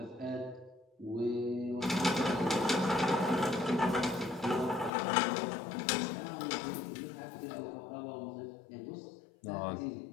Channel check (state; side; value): drops out; right; at 4.9 s